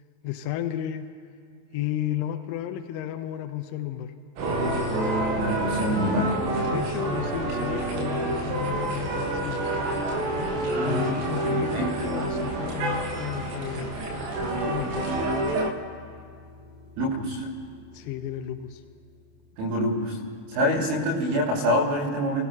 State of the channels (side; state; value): left; late; 28 ms